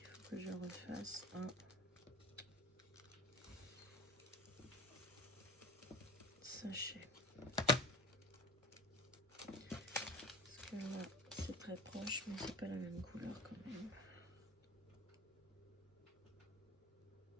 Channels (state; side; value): normal; both; correlation 0.36